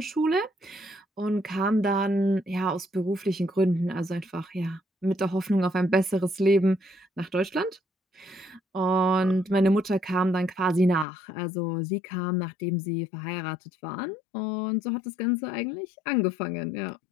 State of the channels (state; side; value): drops out; right; at 11.1 s